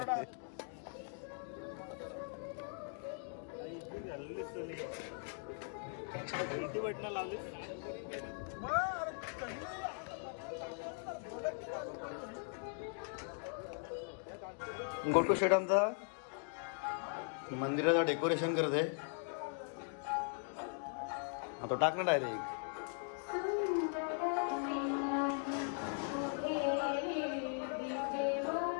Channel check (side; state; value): right; silent; 51 dB below the other